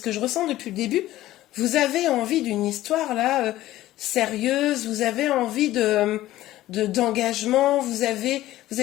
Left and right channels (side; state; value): right; quieter; 15.2 dB